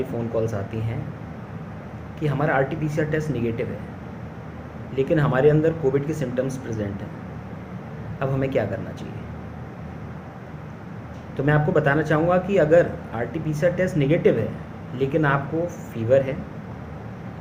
फ़ोन कॉल्स आती हैं कि हमारा RT-PCR टेस्ट निगेटिव है, लेकिन हमारे अंदर कोविड के सिम्टम्स प्रेजेंट हैं। अब हमें क्या करना चाहिए? तो मैं आपको बताना चाहूँगा कि अगर RT-PCR टेस्ट निगेटिव है लेकिन आपको फीवर है,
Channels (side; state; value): both; identical; correlation 1.00